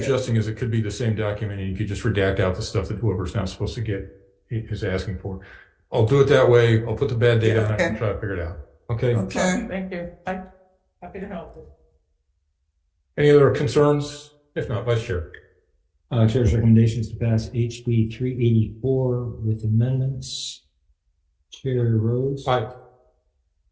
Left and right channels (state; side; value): identical; both; correlation 1.00